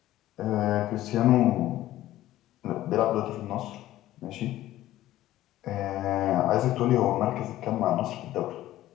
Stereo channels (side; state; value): right; quieter; 14.6 dB